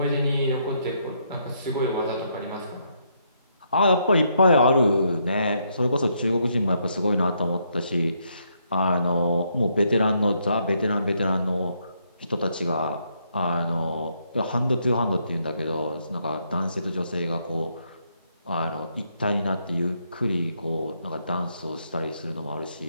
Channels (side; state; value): both; inverted; correlation -0.75